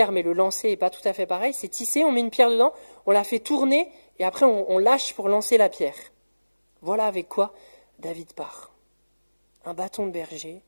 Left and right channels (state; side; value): inverted; both; correlation -1.00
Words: mais le lancer n'est pas tout à fait pareil. C'est tissé, on met une pierre dedans, on la fait tourner, et après on lâche pour lancer la pierre. Voilà avec quoi David part. Un bâton de berger,